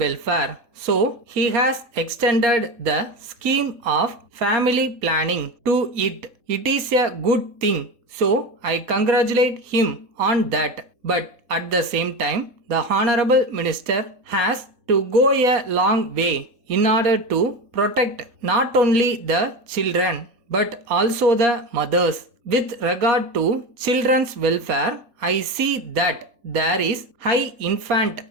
So, he has extended the scheme of family planning to it. It is a good thing. So, I congratulate him on that. But at the same time, the Honorable Minister has to go a long way in order to protect not only the children but also the mothers. With regard to children's welfare, I see that there is high infant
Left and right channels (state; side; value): late; left; 4.2 ms